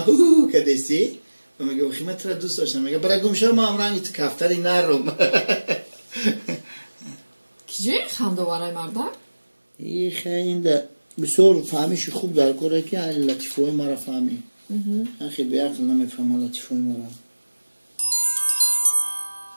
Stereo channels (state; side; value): inverted; both; correlation -1.00